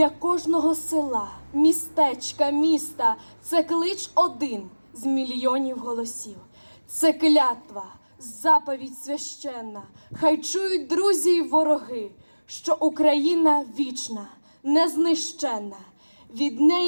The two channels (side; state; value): both; inverted; correlation -1.00